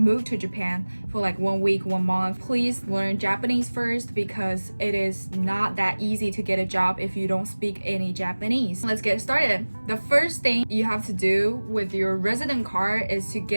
to Japan for like 1 week, 1 month, please learn Japanese first because it is not that easy to get a job if you don't speak any Japanese. Let's get started. The first thing you have to do with your resident card is to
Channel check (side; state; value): both; inverted; correlation -1.00